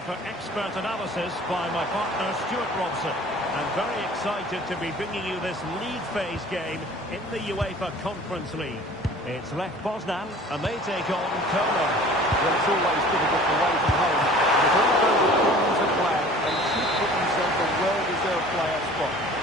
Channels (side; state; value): both; normal; correlation 0.46